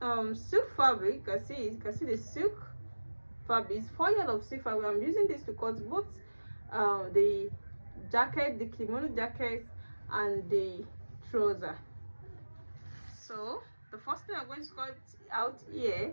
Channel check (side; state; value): both; inverted; correlation -1.00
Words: silk fabric. You can see the silk fabric. It's 4 yards of silk fabric. I'm using this to cut both the jacket, the kimono jacket, and the trouser. So the first thing I'm going to cut out